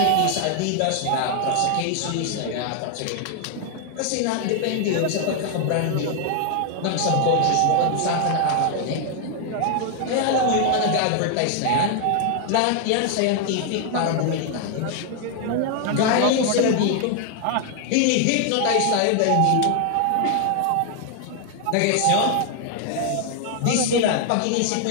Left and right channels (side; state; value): both; different; correlation 0.00